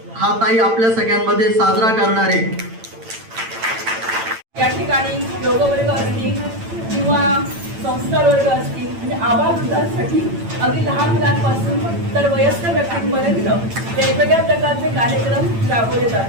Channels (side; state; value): left; late; 8.9 ms